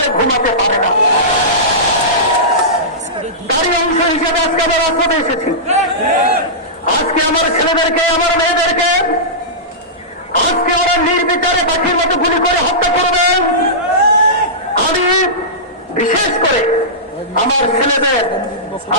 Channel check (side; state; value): both; normal; correlation -0.17